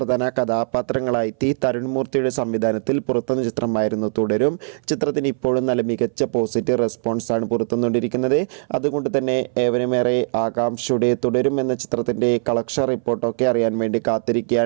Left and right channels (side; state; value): left; silent; 60 dB below the other